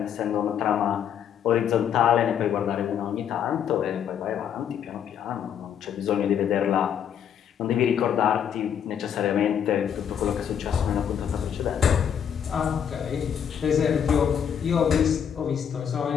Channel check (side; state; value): right; quieter; 8.5 dB